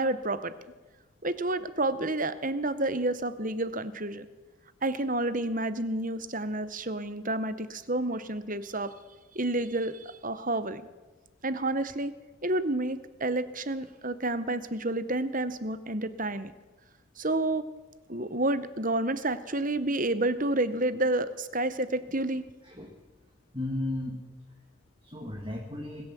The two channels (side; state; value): both; normal; correlation 0.21